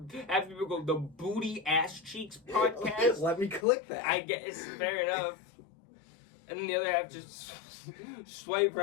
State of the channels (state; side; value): drops out; right; at 3.7 s